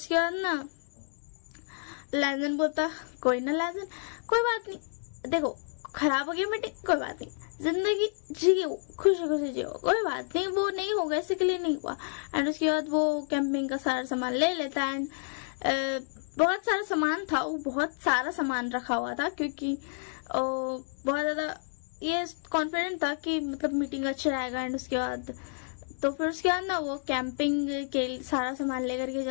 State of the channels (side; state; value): right; silent; digital silence